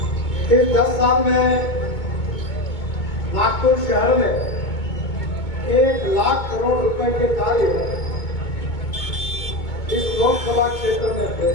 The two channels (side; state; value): right; late; 2.2 ms